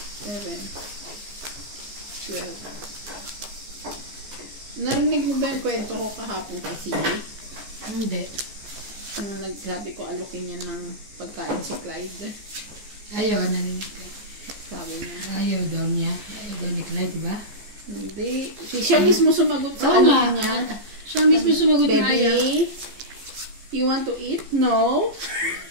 7, 12. Narinig mo ba yung kwento ko kahapon kay CJ? Hindi. Nung nagsabi ko alukin niya ng pagkain si Clyde. Ayaw, narinig ko. Sabi niya. Ayaw daw niya. Ayaw daw ni Clyde, diba? Hindi. Siya mismo sumagot sa Oo nga. ano niya. Siya mismo sumagot na ayaw. Baby, you want to eat? No.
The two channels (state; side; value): late; left; 14 ms